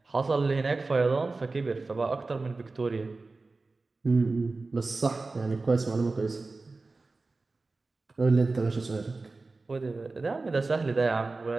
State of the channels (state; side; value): quieter; left; 3.6 dB